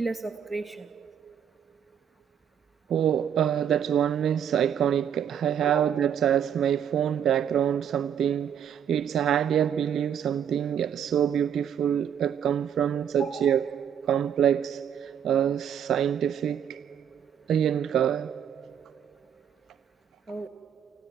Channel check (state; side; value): quieter; left; 8.7 dB